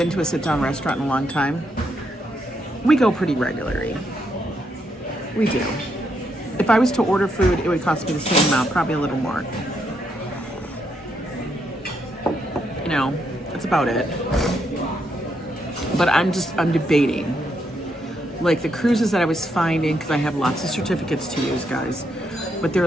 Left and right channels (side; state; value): both; normal; correlation 0.78